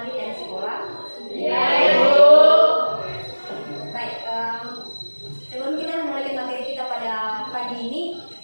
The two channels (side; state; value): both; inverted; correlation -1.00